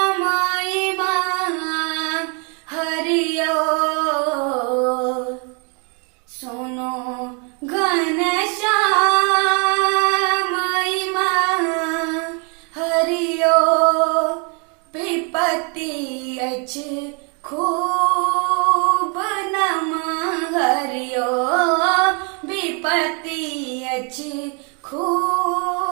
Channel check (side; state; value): left; quieter; 35.4 dB